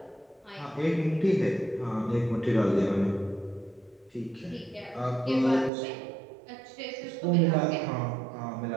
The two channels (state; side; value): drops out; left; at 5.7 s